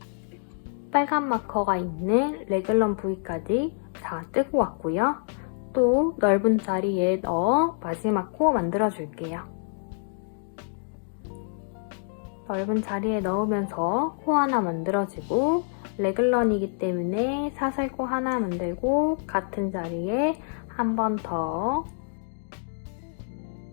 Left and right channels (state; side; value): silent; right; digital silence